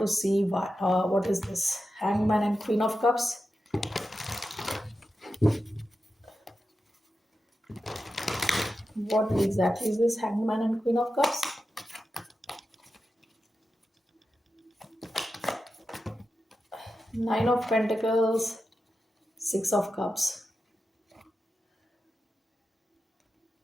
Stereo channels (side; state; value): both; normal; correlation 0.90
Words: see what is this hangman and queen of cups. What exactly is this hangman and queen of cups? Nine of pentacles, six of cups.